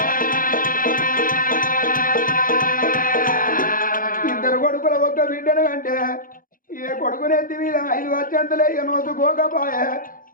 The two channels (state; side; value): late; right; 0.40 ms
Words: ఇద్దరు కొడుకుల ఒక్క బిడ్డను అంటే ఏ కొడుకునెత్తి మీద 5 వచ్చంతలే నోసుకోకపోయే